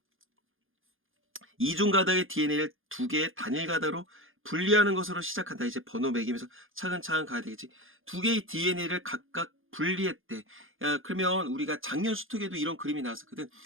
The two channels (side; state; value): left; late; 0.59 ms